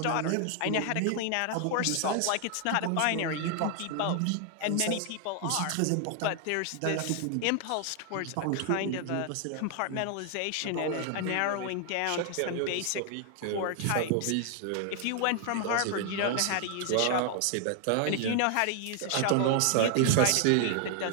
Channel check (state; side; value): different; both; correlation 0.00